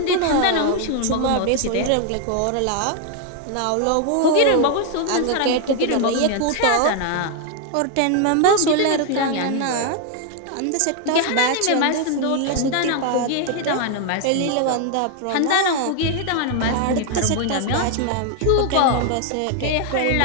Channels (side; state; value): both; different; correlation 0.00